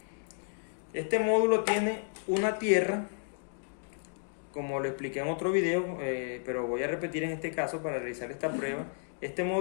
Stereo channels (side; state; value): right; silent; digital silence